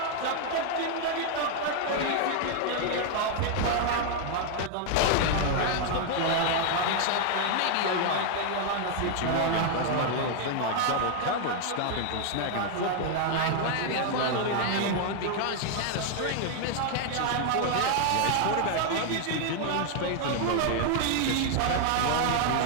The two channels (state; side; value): different; both; correlation 0.00